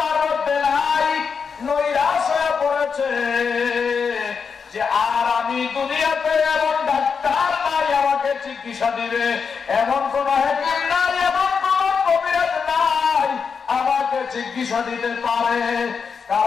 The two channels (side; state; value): right; quieter; 5.9 dB